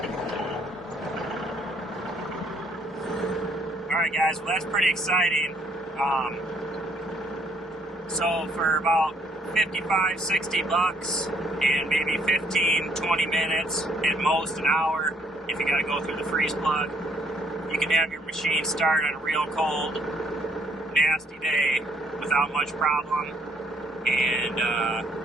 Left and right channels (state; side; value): normal; both; correlation 0.67